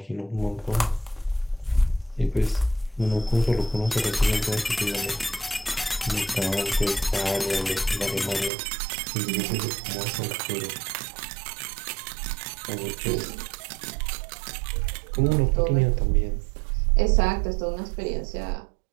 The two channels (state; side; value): drops out; left; at 8.5 s